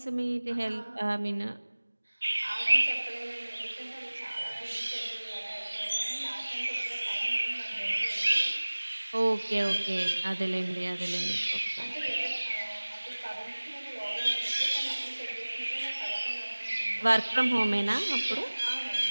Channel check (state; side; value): inverted; both; correlation -1.00